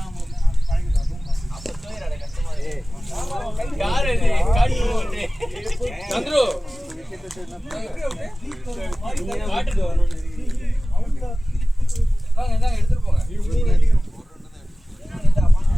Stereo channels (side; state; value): both; normal; correlation 0.97